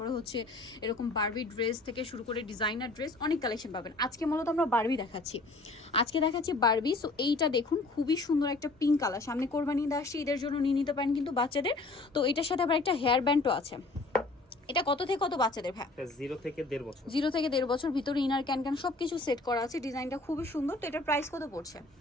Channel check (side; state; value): right; quieter; 3.2 dB